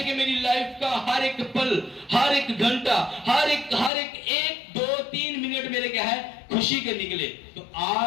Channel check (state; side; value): drops out; right; at 3.9 s